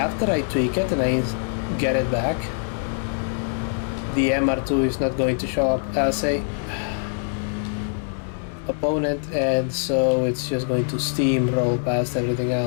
I tweak it and I get it back, the MR2 is not going to show up as a opponent, and so it's just going to steamroll past everything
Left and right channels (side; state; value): right; silent; digital silence